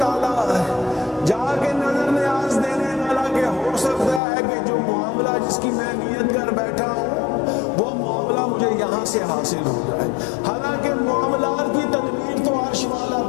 میں نیت کر بیٹھا ہوں وہ معاملہ مجھے یہاں سے حاصل ہو جائے۔ حالانکہ معاملات کی تدبیر تو عرش والا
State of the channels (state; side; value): drops out; right; at 4.2 s